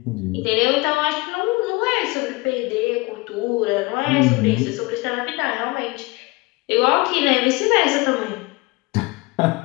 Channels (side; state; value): right; quieter; 23.7 dB